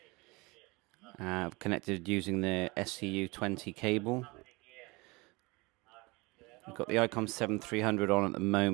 Connected using the SCU20 cable. We've got the ICOM IC 300 on at the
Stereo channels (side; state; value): left; quieter; 25.2 dB